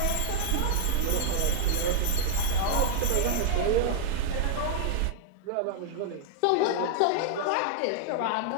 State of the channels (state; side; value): different; both; correlation 0.00